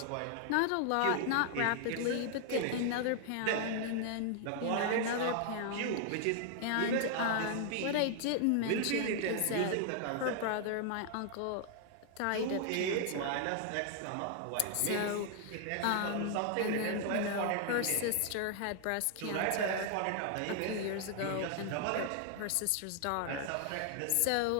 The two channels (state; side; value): different; both; correlation 0.00